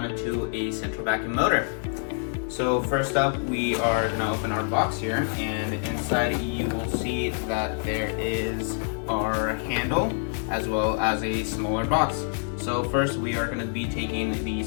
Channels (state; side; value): silent; right; digital silence